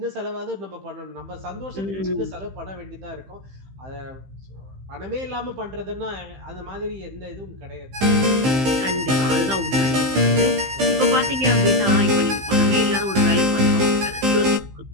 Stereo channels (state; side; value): late; left; 15 ms